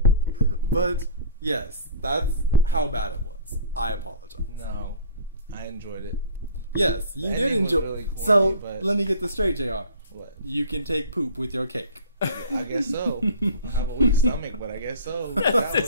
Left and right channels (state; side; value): inverted; both; correlation -0.43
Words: But yes, that's how bad it was. I apologize. No, I enjoyed it. Yes, you The did ending was enjoy. really corny, So but- let me get this straight, Jr. What? You can take poop with your cake. I guess so. I have a weak stomach, but I guess so. That